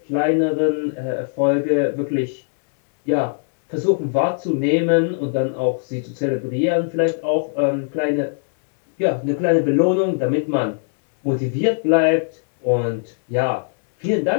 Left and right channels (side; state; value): right; silent; digital silence